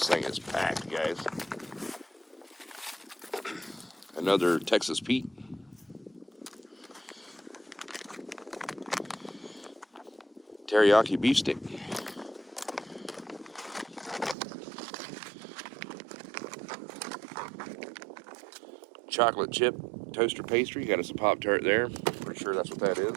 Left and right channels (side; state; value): left; drops out; at 14.4 s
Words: thing is packed, guys. Another Texas Pete. Teriyaki beef stick. Chocolate chip toaster pastry. Got us a Pop-Tart there. Pretty sure that's what that